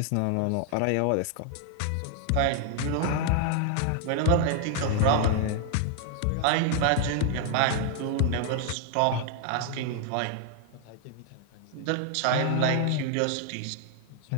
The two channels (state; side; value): different; both; correlation 0.00